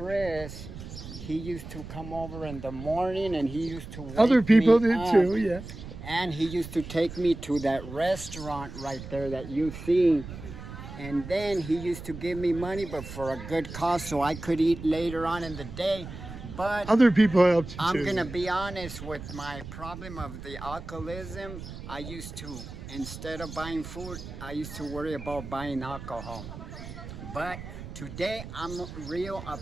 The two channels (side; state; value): right; noise; rumble, 11 dB below the sound